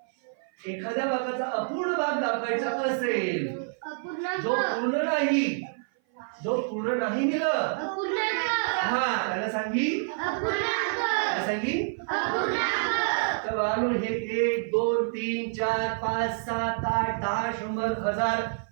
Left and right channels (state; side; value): silent; left; 56 dB below the other